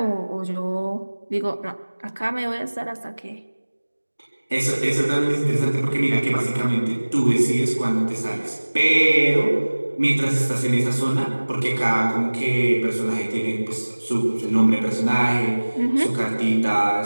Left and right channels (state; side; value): inverted; both; correlation -1.00